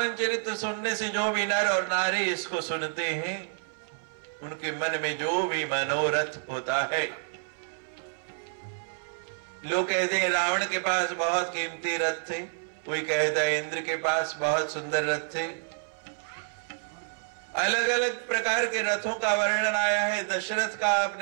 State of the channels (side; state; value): left; silent; 59 dB below the other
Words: चरित्र सुनने से जो भी नर और नारी इसको सुनते हैं, उनके मन में जो भी मनोरथ होता है। लोग कहते हैं रावण के पास बहुत कीमती रथ थे, कोई कहता है इंद्र के पास बहुत सुंदर रथ थे। अलग अलग प्रकार के रथों का वर्णन आया है। दशरथ का